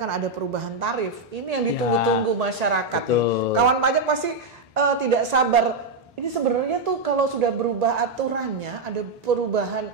ada perubahan tarif. Ini yang ditunggu-tunggu masyarakat nih. Kawan pajak pasti tidak sabar. Ini sebenarnya tuh kalau sudah berubah aturannya, ada perubahan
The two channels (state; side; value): quieter; left; 3.2 dB